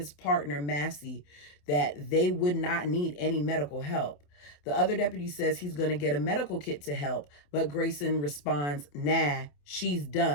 partner, Massey, that they would not need any medical help. The other deputy says he's going to get a medical kit to help, but Grayson responds, nah, She's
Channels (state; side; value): late; right; 28 ms